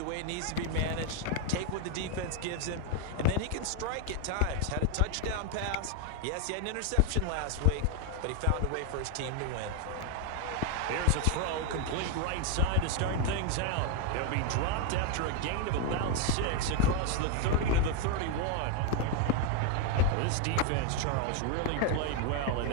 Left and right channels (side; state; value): both; different; correlation 0.01